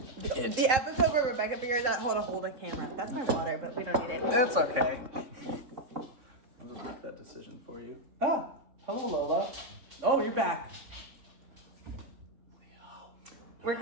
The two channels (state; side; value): late; left; 3.6 ms